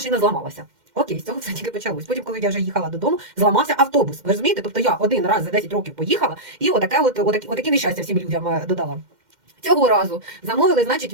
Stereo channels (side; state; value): left; late; 2.1 ms